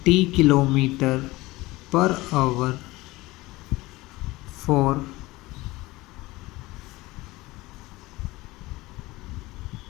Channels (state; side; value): quieter; right; 20.1 dB